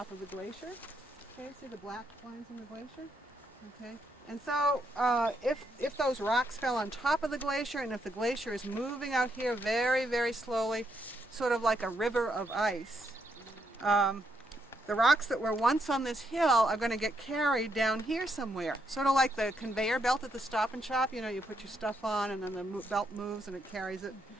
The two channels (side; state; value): both; normal; correlation 0.78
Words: of the glacier. Okay, see the black lines in the glacier? Okay, and so if those rocks fell on top of the glacier, and if the glacier is moving out here very, very slowly, sort of like a river of ice, the rocks that were once on this hill are going to get carried down here somewhere. Sort of like the conveyor belt at the Stop and Shop. You know, you put your stuff on and then the belt moves and it carries it